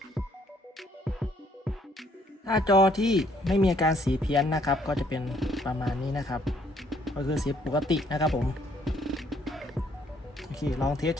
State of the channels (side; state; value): both; normal; correlation 0.66